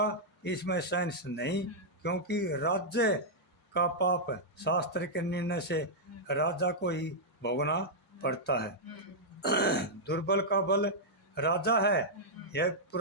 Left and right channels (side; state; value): both; normal; correlation -0.08